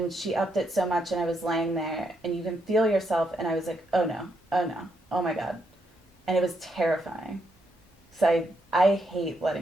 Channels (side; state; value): both; normal; correlation 0.78